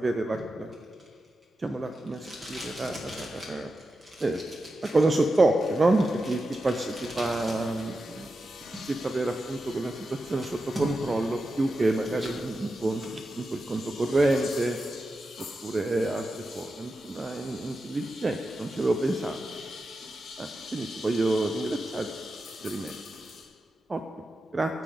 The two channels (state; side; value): normal; both; correlation 0.90